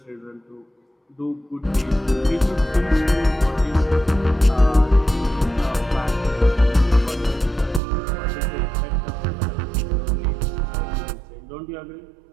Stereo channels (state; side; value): drops out; left; at 7.8 s